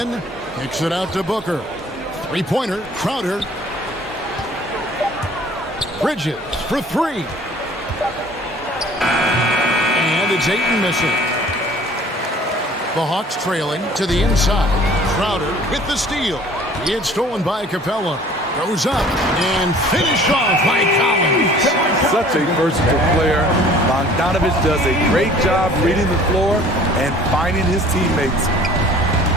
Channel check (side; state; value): both; normal; correlation 0.51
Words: Kicks it out to Booker. Three-pointer. Crowder. Bridges for 3. And it's Ayton missing. The Hawks trailing to the inside. Crowder with the steal. It's stolen by Capella. Goes up and finished off by Collins. Such a versatile player. Bogdanovich does a great job reading the floor and finding his teammates.